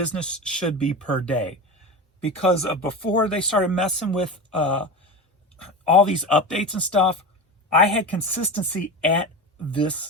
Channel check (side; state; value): both; normal; correlation 0.25